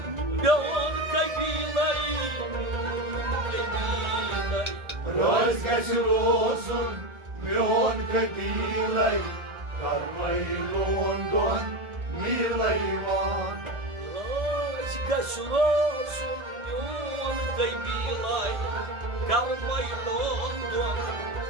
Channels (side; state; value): left; late; 1.7 ms